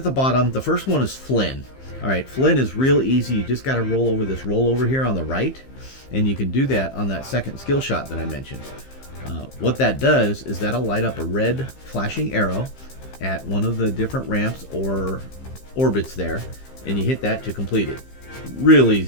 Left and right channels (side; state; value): right; late; 15 ms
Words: the bottom. The first one is Flynn. All right, Flynn is real easy. You just got to roll over this rollover here on the right, and you can do that on that second skill shot that I mentioned. What that does is that'll light up a red flashing arrow at one of the different ramps or orbits there, and you hit that to complete it. Real